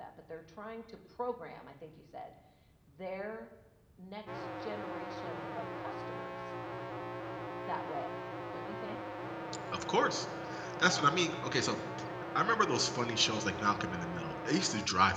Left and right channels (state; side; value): identical; both; correlation 1.00